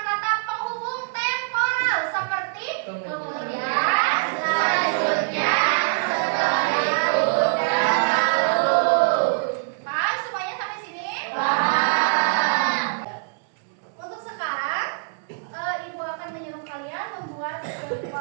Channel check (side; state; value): left; silent; 63 dB below the other